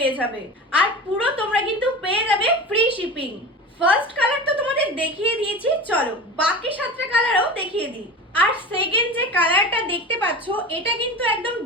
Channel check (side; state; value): both; normal; correlation 0.31